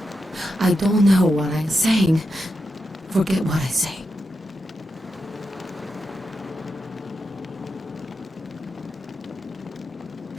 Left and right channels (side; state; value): both; normal; correlation 0.87